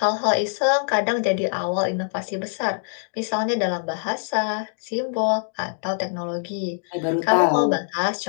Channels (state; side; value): silent; right; digital silence